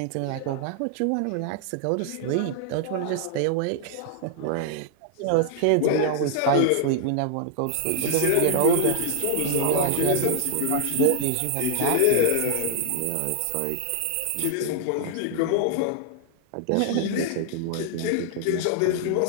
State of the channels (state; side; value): different; both; correlation 0.00